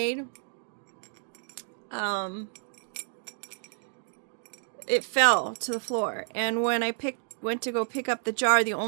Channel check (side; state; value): left; silent; 58 dB below the other